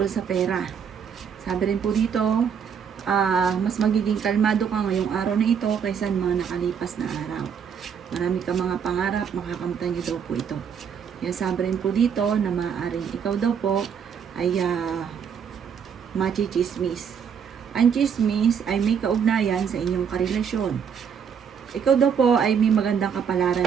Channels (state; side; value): quieter; left; 7.3 dB